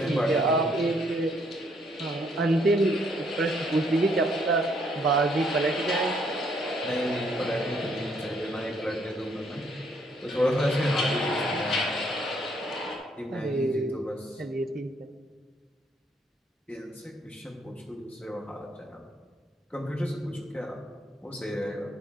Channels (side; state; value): both; normal; correlation 0.69